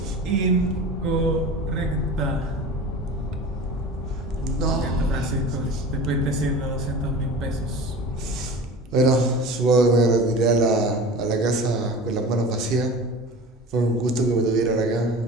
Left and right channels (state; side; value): normal; both; correlation 0.36